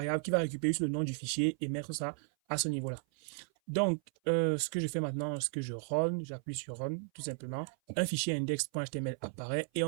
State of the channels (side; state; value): left; silent; 55 dB below the other